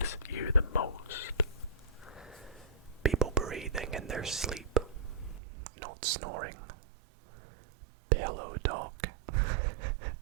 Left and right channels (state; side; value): drops out; left; at 5.4 s